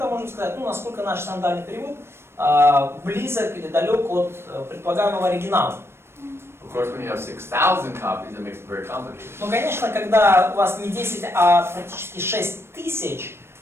можем сказать, насколько наш синодальный перевод близок или далек от предполагаемого оригинала. Of course, when you have 6,000 copies, it makes it very complicated. Ну, конечно, когда у вас не 10, а практически 6 тысяч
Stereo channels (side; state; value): left; late; 0.12 ms